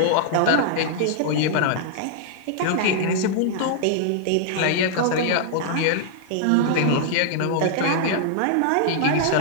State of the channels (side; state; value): both; different; correlation -0.01